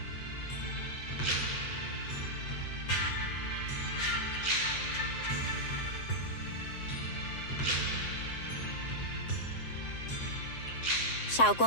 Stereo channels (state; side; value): late; right; 7.7 ms